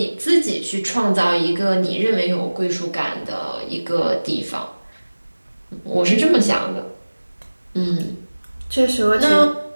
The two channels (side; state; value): both; inverted; correlation -1.00